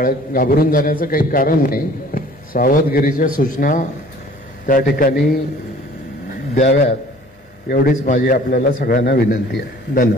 जाण्याचं काही कारण नाही, सावधगिरीच्या सूचना त्या ठिकाणी द्याव्यात एवढीच माझी आपल्याला सगळ्यांना विनंती आहे.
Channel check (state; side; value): normal; both; correlation 0.51